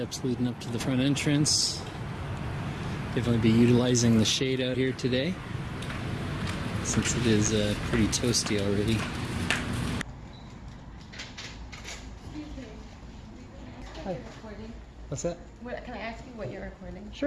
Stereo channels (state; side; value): identical; both; correlation 1.00